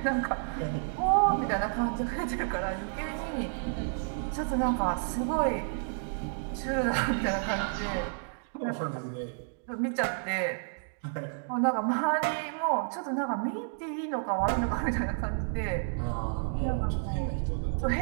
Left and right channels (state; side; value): silent; left; digital silence